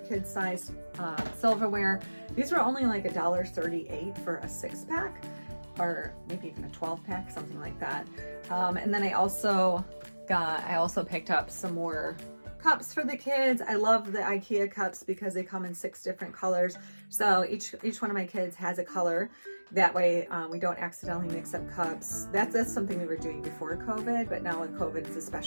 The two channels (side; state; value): both; inverted; correlation -1.00